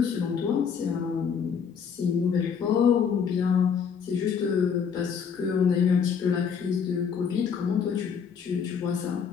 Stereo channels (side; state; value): right; quieter; 6.8 dB